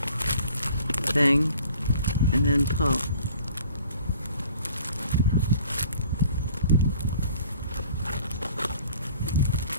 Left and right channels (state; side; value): inverted; both; correlation -0.53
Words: and then pull.